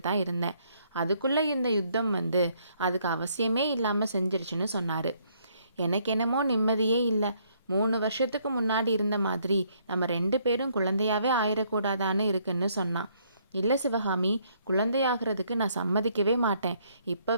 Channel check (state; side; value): inverted; both; correlation -0.68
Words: தான் இருந்தேன். அதுக்குள்ளே இந்த யுத்தம் வந்து அதுக்கு அவசியமே இல்லாமல் செஞ்சிருச்சுன்னு சொன்னார். எனக்கு என்னமோ நிம்மதியே இல்லை. 3 வருஷத்துக்கு முன்னாடி இருந்த மாதிரி நம்ம 2 பேரும் குழந்தையாவே ஆயிடக்கூடாதான்னு இருக்குன்னு சொன்னான். இல்லை சிவகாமி, குழந்தையாகிறதுக்கு நான் சம்மதிக்கவே மாட்டேன்.